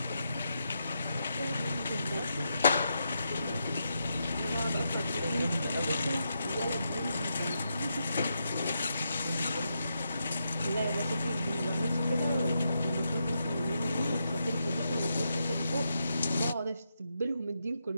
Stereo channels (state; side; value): inverted; both; correlation -0.83